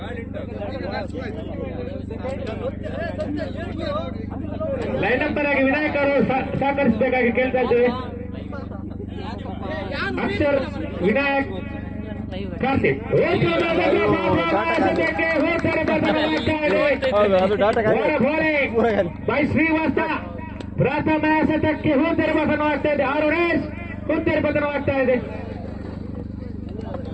ಲೈನ್ ನಂಬರ್ ಆಗಿ ವಿನಾಯಕ್ ಅವರು ಸಹಕರಿಸಬೇಕಾಗಿ ಕೇಳ್ತಾ ಇದ್ದೇವೆ. ಅಕ್ಷರ್, ವಿನಾಯಕ್, ಕಾರ್ತಿಕ್. ಬೈ ಶ್ರೀವಾಸ ಪ್ರಥಮ ಎಸೆತಕ್ಕೆ ಹೂತೆರೆ ಪತನವಾಗ್ತಾ ಇದೆ. 6 ರನ್ಸ್ ಹೂತೆರೆ ಪತನವಾಗ್ತಾ ಇದೆ.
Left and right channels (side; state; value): both; identical; correlation 1.00